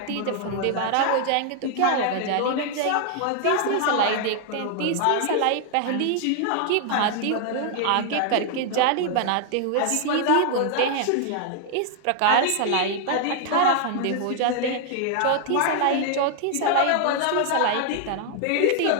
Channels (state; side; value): different; both; correlation 0.00